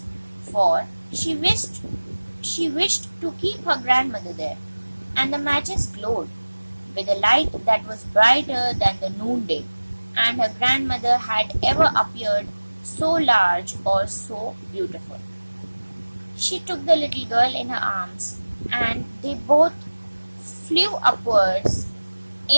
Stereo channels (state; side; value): inverted; both; correlation -1.00